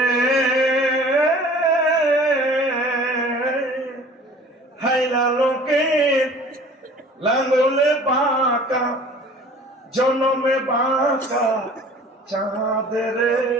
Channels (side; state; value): both; normal; correlation 0.47